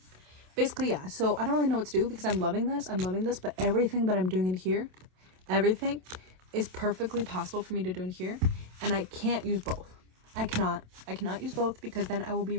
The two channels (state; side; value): late; left; 27 ms